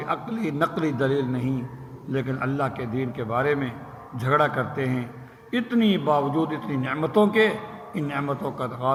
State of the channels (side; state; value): both; identical; correlation 1.00